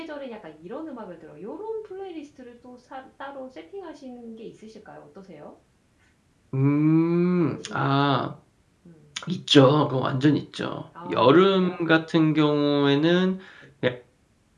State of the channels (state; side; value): identical; both; correlation 1.00